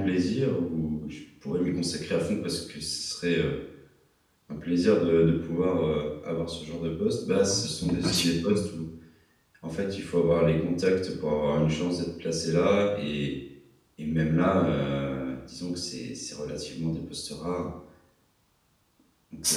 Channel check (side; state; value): both; identical; correlation 1.00